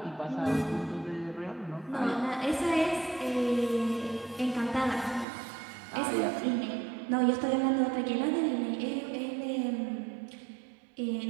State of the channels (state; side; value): drops out; left; at 5.2 s